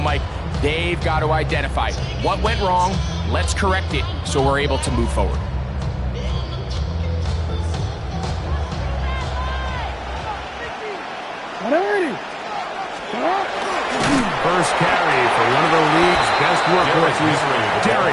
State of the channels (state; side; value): identical; both; correlation 1.00